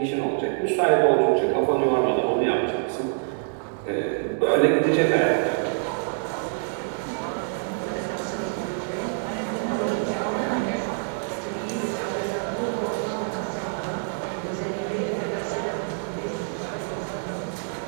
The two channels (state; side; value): silent; left; digital silence